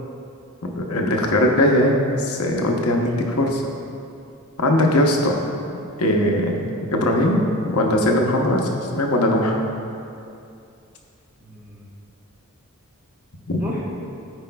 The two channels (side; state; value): both; normal; correlation 0.30